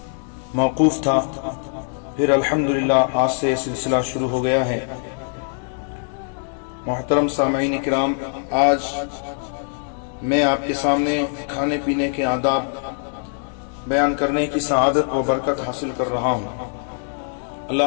موقوف تھا، پھر الحمدللہ آج سے سلسلہ شروع ہو گیا ہے۔ محترم سامعین کرام، آج میں آپ کے سامنے کھانے پینے کے آداب بیان کرنے کی سعادت و برکت حاصل کر رہا ہوں۔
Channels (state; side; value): silent; right; 60 dB below the other